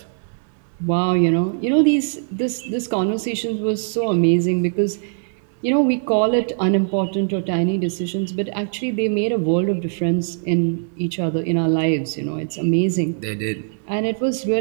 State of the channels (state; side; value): silent; left; digital silence